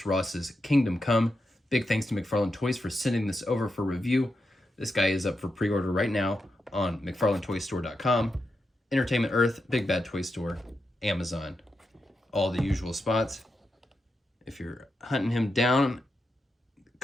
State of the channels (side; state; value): both; normal; correlation 0.86